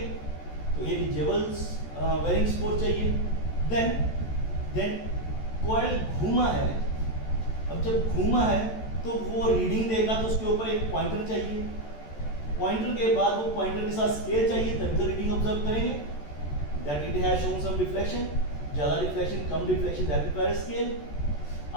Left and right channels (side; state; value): right; late; 14 ms